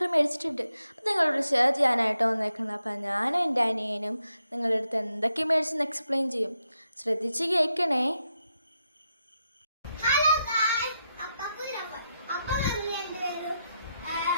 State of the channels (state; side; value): inverted; both; correlation -0.84